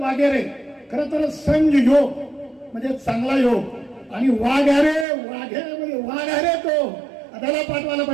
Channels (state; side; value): drops out; left; at 5.1 s